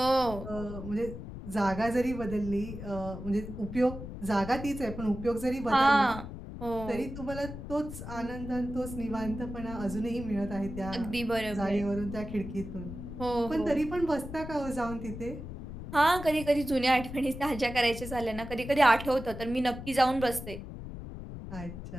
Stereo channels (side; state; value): left; noise; rumble, 10 dB below the sound